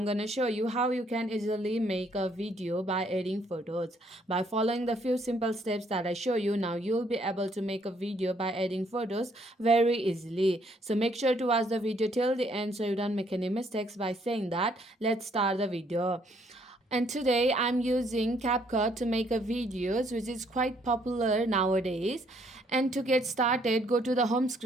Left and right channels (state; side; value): normal; both; correlation 0.67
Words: gonna show you how you can easily make a video by adding photos. By following the few simple steps that I show you, now you'll be able to make a video by adding photos very easily. So make sure to watch the video till the end so you don't make any mistakes. By saying that, let's start the video. And today I'm using CapCut to make a videos, which is quite popular nowadays. And to get started, go to the home